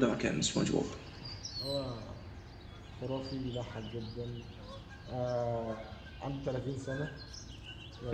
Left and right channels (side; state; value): both; identical; correlation 1.00